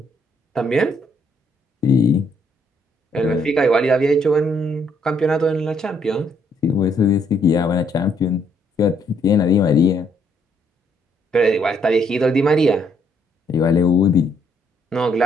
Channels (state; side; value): normal; both; correlation 0.70